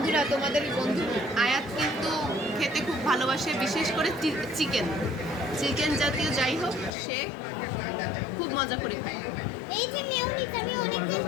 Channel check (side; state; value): right; drops out; at 6.9 s